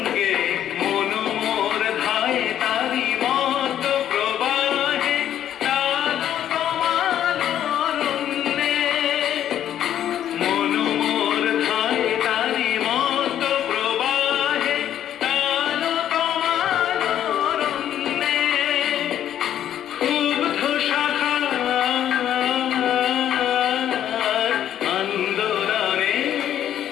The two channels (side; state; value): right; quieter; 10.7 dB